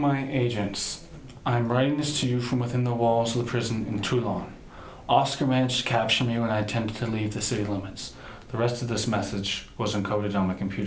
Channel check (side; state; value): both; identical; correlation 1.00